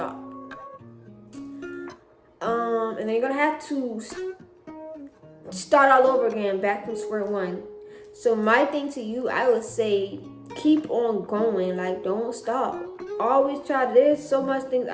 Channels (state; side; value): identical; both; correlation 1.00